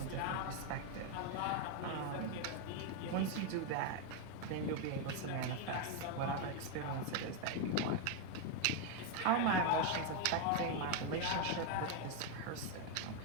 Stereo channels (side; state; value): both; different; correlation 0.01